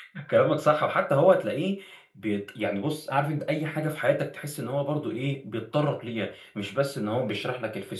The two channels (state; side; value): identical; both; correlation 1.00